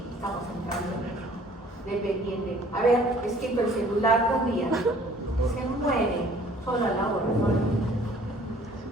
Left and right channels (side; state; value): both; normal; correlation 0.54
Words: estamos entrando en eso. Dependiente. A ver, es que el celular un día se muere solo a la hora, ¿no?